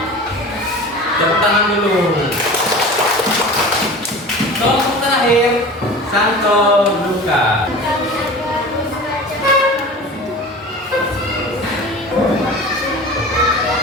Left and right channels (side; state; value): both; normal; correlation 0.36